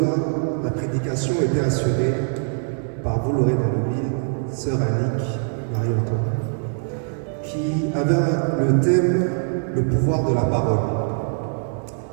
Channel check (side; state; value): left; silent; digital silence